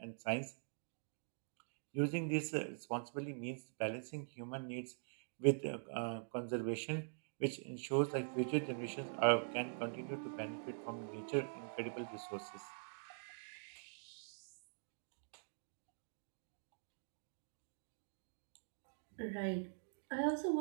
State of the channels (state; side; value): silent; left; digital silence